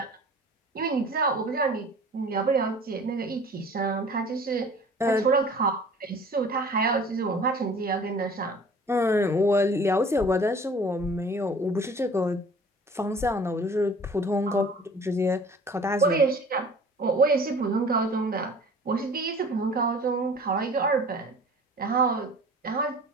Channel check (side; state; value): both; normal; correlation 0.47